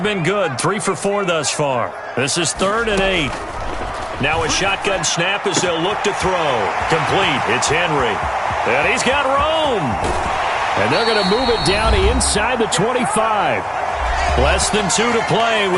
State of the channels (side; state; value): both; identical; correlation 1.00